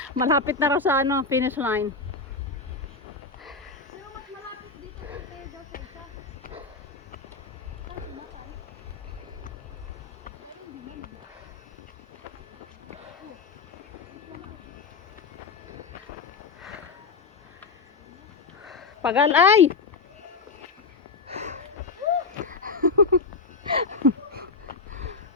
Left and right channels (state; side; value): quieter; right; 4.2 dB